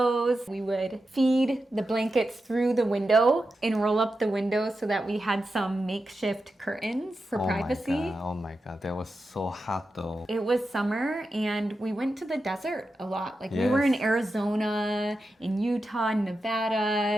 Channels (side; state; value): both; normal; correlation 0.90